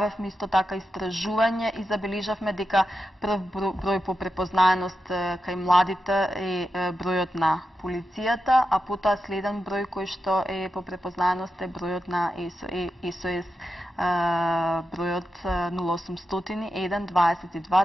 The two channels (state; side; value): normal; both; correlation 0.88